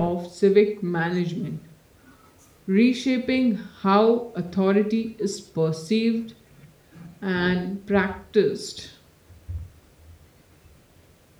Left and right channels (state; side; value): identical; both; correlation 1.00